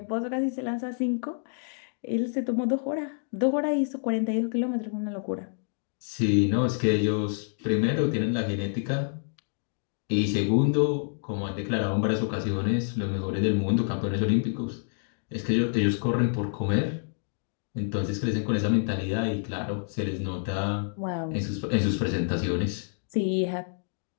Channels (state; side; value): silent; right; digital silence